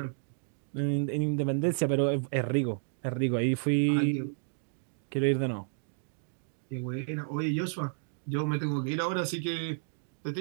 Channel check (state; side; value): silent; left; digital silence